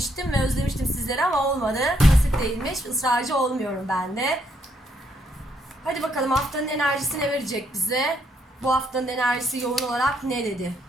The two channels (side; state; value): both; normal; correlation 0.73